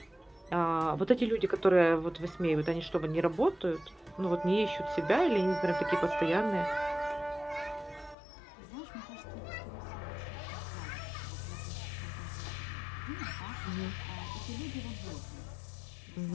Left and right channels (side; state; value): right; drops out; at 8.2 s